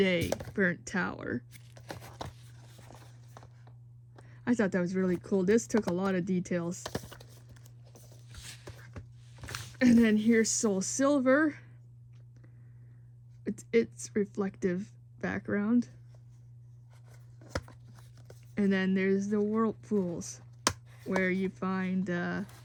Burnt Tower. I thought that was really cool. This took a lot of details. And then here's Soul Silver. It's reflective background. And then there's the Whirlpools, where you find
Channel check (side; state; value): both; identical; correlation 1.00